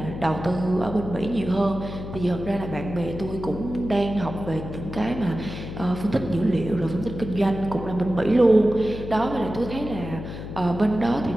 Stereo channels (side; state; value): left; noise; hum, 9 dB below the sound